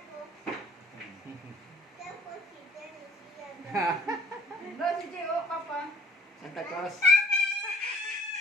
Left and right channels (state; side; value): normal; both; correlation 0.52